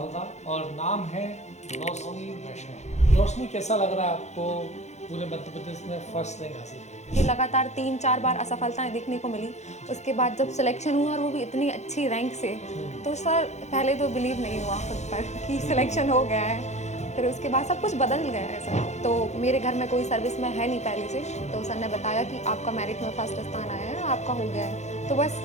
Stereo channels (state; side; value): late; right; 0.33 ms